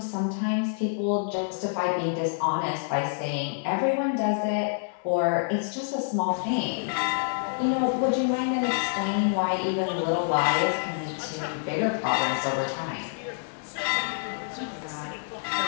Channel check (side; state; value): right; silent; digital silence